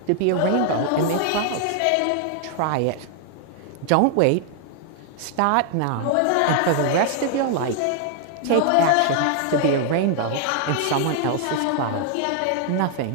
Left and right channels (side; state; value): both; different; correlation 0.00